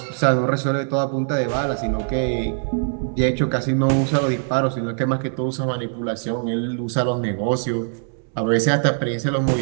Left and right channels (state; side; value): silent; left; digital silence